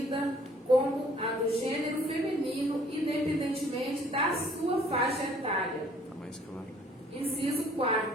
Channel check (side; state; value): both; normal; correlation 0.58